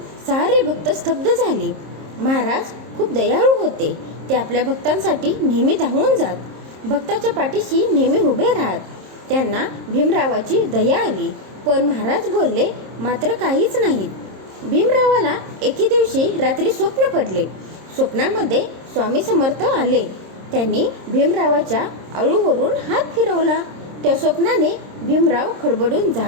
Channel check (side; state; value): left; late; 26 ms